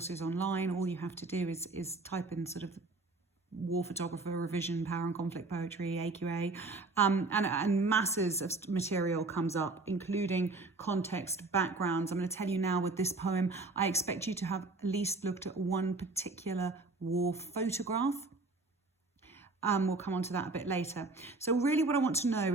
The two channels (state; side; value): quieter; left; 3.5 dB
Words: online. All you have to do is type in sort of war photographer, revision, power and conflict poetry, AQA, and masses of material comes up, including context, backgrounds. I'm going to tell you now with this poem, I expect you to have at least looked at one particular war photograph. We'll come on to that a bit later. So really what I want to know